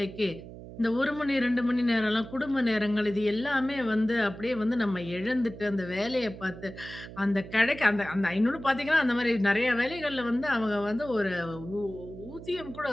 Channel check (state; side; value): noise; right; hum, 14 dB below the sound